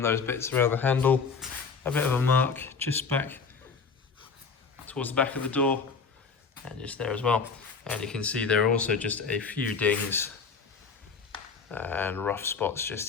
those bits around the handle, a bit of a mark just back towards the back of the door, and just there as well. And you can see there are also just a few dings and rough spots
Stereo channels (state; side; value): quieter; right; 5.3 dB